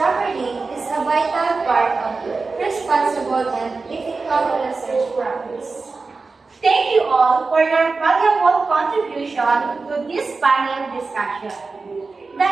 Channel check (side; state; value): left; quieter; 4.1 dB